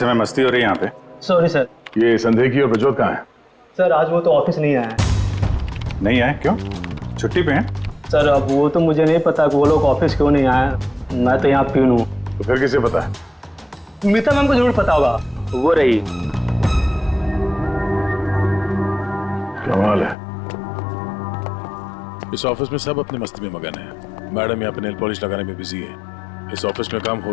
मस्ती हो रही है यहाँ पे। Sorry sir. ये संदेही और प्रज्वल कहाँ है? सर आज वो तो ऑफिस नहीं आया है। नहीं आए? क्यों? छुट्टी पे हैं? सर अब वो तो मुझे नहीं पता कि वो लोग ऑफिस क्यों नहीं आए। मैं तो यहाँ प्यून हूँ। तो फिर किसे पता है? मीता मैम को जरूर पता होगा, वो रही। कमाल है, इस ऑफिस में सब अपनी मस्ती में मगन है। मैडम यहाँ पे नेल पॉलिश लगाने में बिजी है। इस ऑफिस में काम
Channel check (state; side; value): drops out; right; at 20.2 s